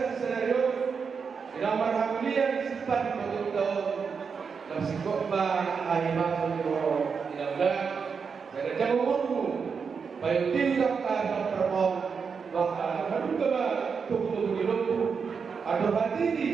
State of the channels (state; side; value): quieter; left; 5.8 dB